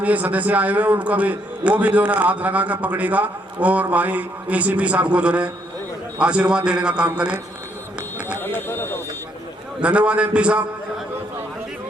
सदस्य आए हुए उनका भी वो भी जो है हाथ लगा कर पकड़ेगा और भाई एसीपी साहब को जो है आशीर्वाद देने का काम करें। धन्यवाद एमपी साहब।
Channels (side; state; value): both; normal; correlation 0.72